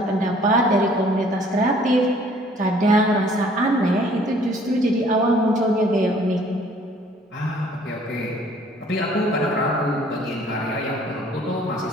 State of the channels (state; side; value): normal; both; correlation 0.57